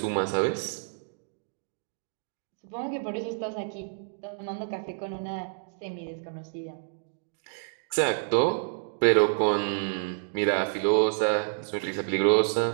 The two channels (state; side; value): silent; left; digital silence